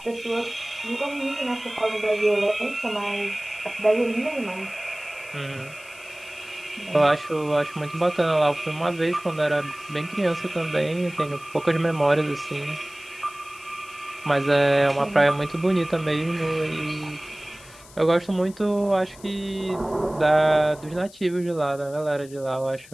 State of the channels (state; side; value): noise; left; hiss, 21 dB below the sound